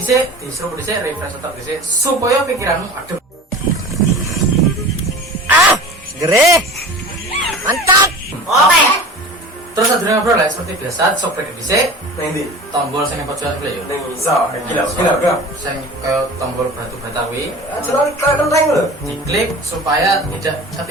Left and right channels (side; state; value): both; normal; correlation 0.38